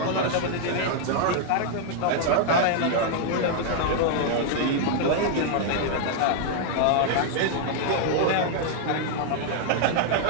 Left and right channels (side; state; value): both; different; correlation 0.00